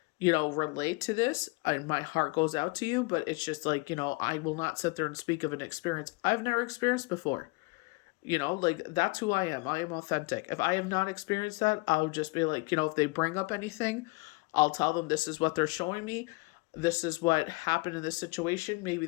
relate to this. My heart goes out to you, but it's just like, I will not sit there and speak of an experience I've never experienced before. Like that's who I am. I am authentic. If I have not experienced that, I'll just be like, if they bring up anything, I'll tell them this is what they're showing me. This is what happened in this situation. Maybe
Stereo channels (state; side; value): quieter; right; 27.5 dB